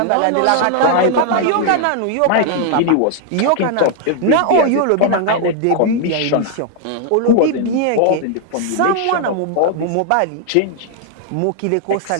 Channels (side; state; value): both; different; correlation 0.00